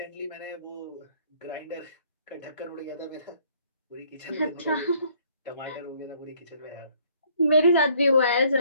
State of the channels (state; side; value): inverted; both; correlation -0.62